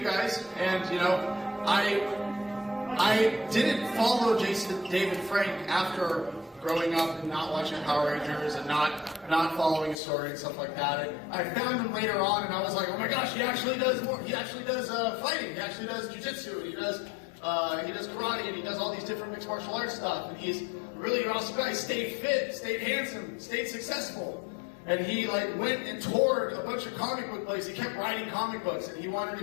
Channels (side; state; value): right; drops out; at 10.0 s